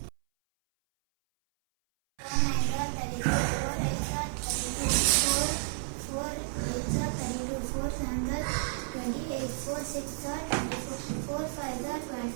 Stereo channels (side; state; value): left; silent; 57 dB below the other